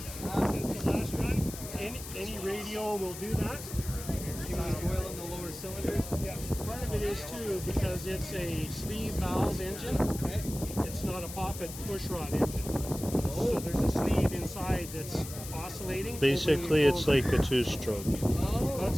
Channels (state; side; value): noise; left; hiss, 11 dB below the sound